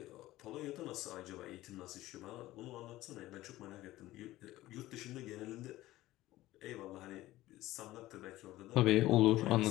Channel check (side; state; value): right; quieter; 16.5 dB